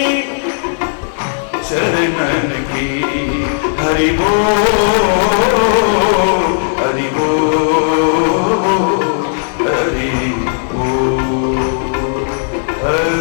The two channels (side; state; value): right; silent; digital silence